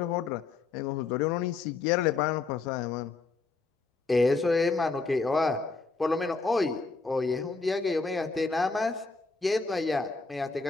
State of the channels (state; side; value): quieter; right; 4.0 dB